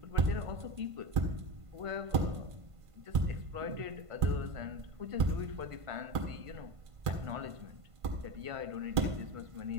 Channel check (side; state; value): left; late; 1.5 ms